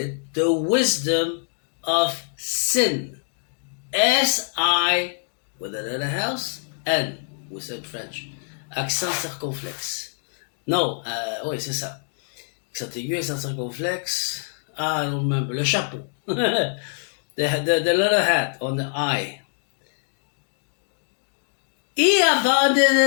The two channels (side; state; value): right; silent; 62 dB below the other